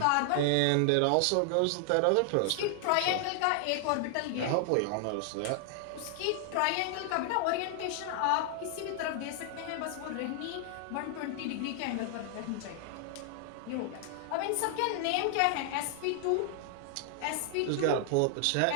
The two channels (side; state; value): both; different; correlation 0.00